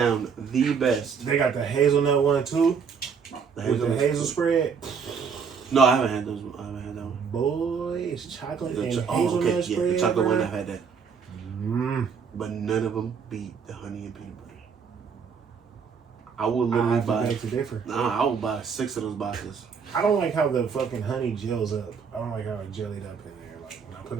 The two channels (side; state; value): left; quieter; 6.2 dB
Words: the best. They got the hazelnut one too, with the hazel spread. No, I haven't had those. I haven't had that one. Boy, it's chocolate and The hazelnut spread. yeah, the chocolate one. bro. I've had that, but none of them beat the honey and peanut butter. I will I literally have to buy. beg to differ. Nah, I will buy 6 of those boxes. I don't like how the fucking honey gels up. I don't like how it jellied up in there. Like when I put